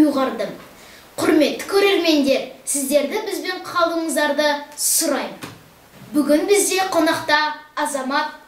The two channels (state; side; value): identical; both; correlation 1.00